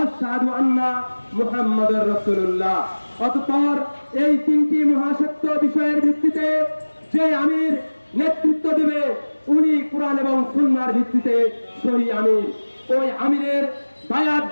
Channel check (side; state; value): both; inverted; correlation -1.00